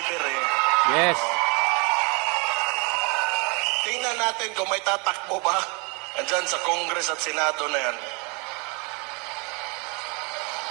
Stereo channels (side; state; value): left; quieter; 31.6 dB